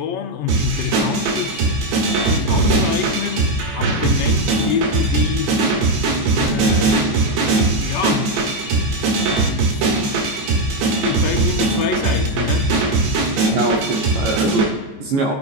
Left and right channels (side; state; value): left; late; 15 ms